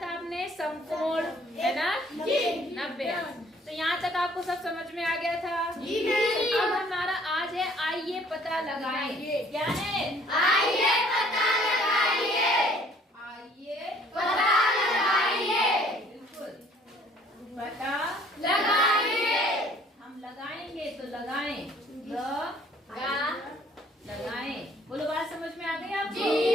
था आपने समकोण, है ना, 90 अंश। तो यहाँ तक आपको सब समझ में आ गया था? अब हमारा आज है आइए पता लगाएं। क्या है? आइए पता लगाइए। बिल्कुल, पता लगाइए। हम लगाएंगे तो लगाएं, लगाएं। बोलो, बात समझ में आ गई आपको?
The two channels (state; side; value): normal; both; correlation 0.58